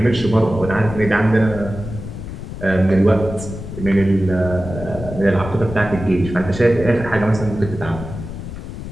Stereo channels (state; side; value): noise; left; rumble, 10 dB below the sound